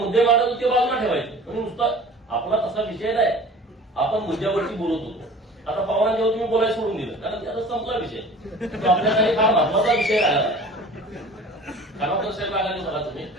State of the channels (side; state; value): both; normal; correlation 0.43